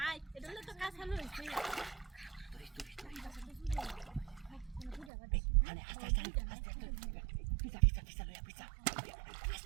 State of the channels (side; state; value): left; drops out; at 5.1 s